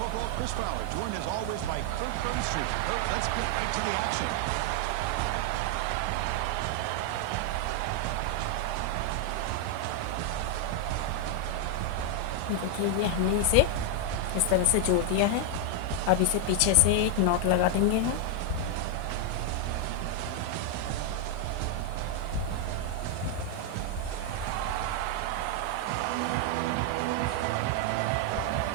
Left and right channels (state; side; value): different; both; correlation 0.00